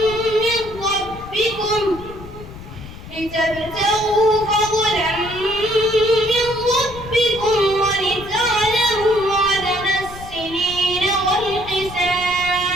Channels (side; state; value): left; noise; rumble, 15 dB below the sound